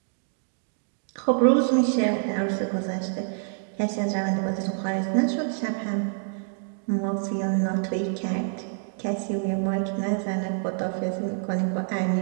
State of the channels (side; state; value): left; silent; 60 dB below the other